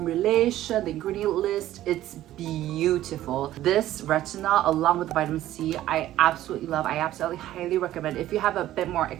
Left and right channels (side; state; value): left; quieter; 13.8 dB